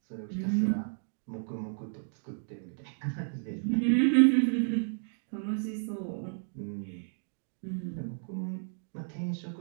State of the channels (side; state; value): left; silent; digital silence